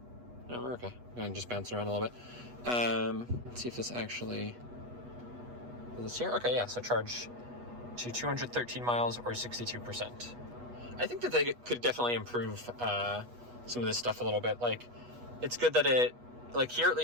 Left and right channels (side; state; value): left; late; 8.2 ms